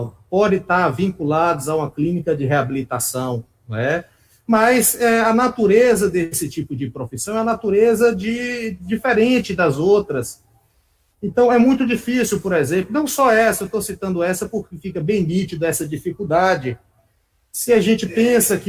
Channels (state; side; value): identical; both; correlation 1.00